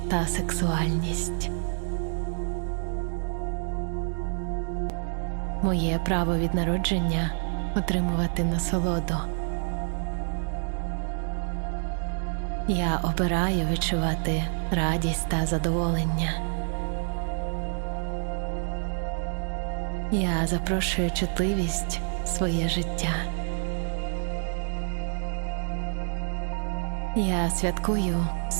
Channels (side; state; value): left; silent; digital silence